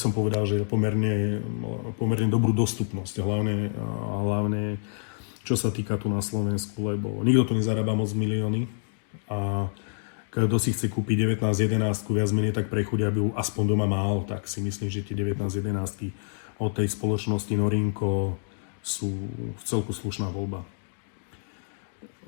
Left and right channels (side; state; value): right; silent; digital silence